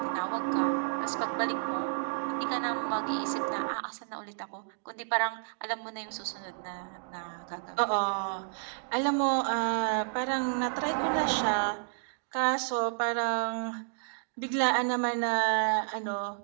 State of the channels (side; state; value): left; silent; digital silence